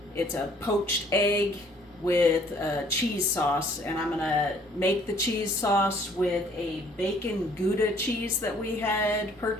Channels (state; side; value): normal; both; correlation 0.59